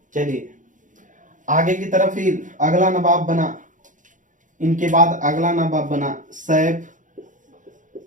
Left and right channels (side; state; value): left; late; 0.37 ms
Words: चलिए आगे की तरफ। फिर अगला नवाब बना, इनके बाद अगला नवाब बना सैफ